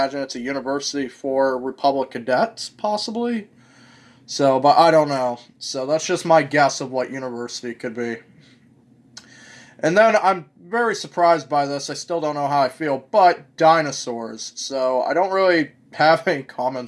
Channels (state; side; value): identical; both; correlation 1.00